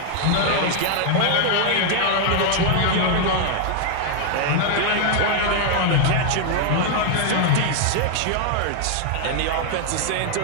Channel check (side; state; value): both; different; correlation 0.00